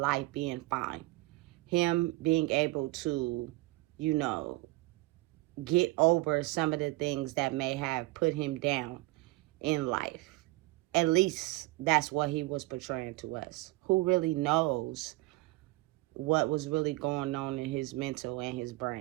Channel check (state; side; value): quieter; left; 21.0 dB